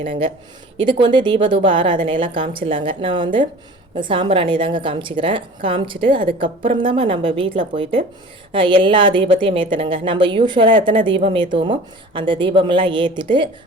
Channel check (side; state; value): both; normal; correlation 0.42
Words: இதுக்கு தீபதூப ஆராதனையெல்லாம் காமிச்சிடலாங்க. நான் சாம்பிராணி தாங்க காமிச்சிக்கிறேன். காமிச்சிட்டு அதுக்கப்புறம் தான் நம்ம வீட்டில் போயிட்டு எல்லா தீபத்தையும் ஏற்றணுங்க. நம்ம யூஸ்வலாக எத்தனை தீபம் ஏற்றுவோமோ அந்த தீபமெல்லாம் ஏற்றிட்டு